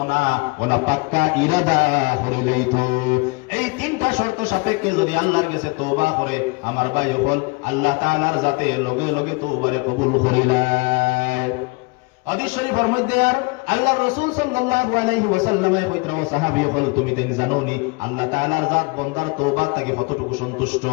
না, ওলা পাক্কা ইরাদা করে লইতো। এই তিনটা শর্ত সাপেক্ষে যদি আল্লাহর কাছে তওবা করে আমার ভাই হল আল্লাহ তাআলার জাতে লগে লগে তওবারে কবুল করিলাই। হাদিস শরীফের মধ্যে আর আল্লাহর রাসূল সাল্লাল্লাহু আলাইহি ওয়াসাল্লামে কইতরা ও সাহাবী হল তুমি দেন জানোনি আল্লাহ তাআলার জাত বান্দার তওবা থেকে কতটুকু সন্তুষ্ট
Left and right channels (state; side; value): quieter; right; 27.5 dB